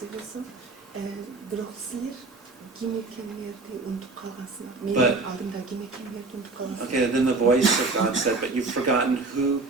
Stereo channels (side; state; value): left; quieter; 3.6 dB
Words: okay, then the voice of God said, but you've forgotten who